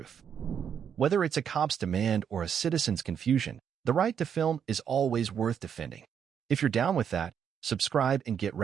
Whether it's a cop's demand or a citizen's confusion, the right to film is always worth defending. If you're down with that, subscribe and get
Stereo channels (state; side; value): quieter; left; 8.0 dB